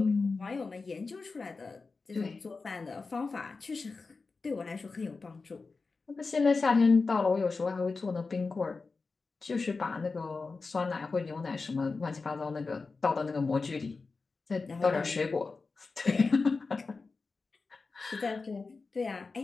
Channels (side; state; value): right; quieter; 4.2 dB